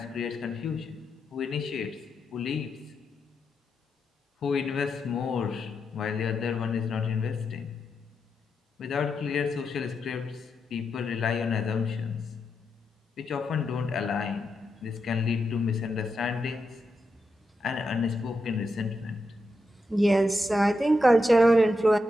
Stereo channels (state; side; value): normal; both; correlation 0.85